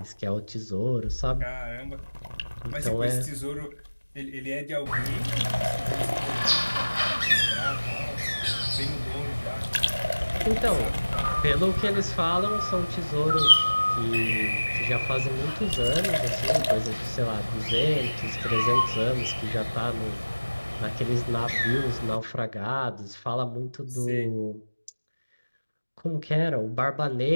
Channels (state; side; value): inverted; both; correlation -1.00